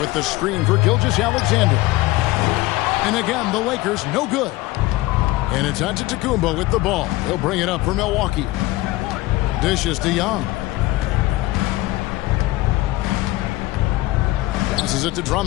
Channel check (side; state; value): right; quieter; 18.8 dB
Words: the screen for Gilgeous-Alexander. And again, the Lakers no good. And it's Antetokounmpo with the ball. He'll bring it up for Milwaukee. Dishes to Young. Passes it to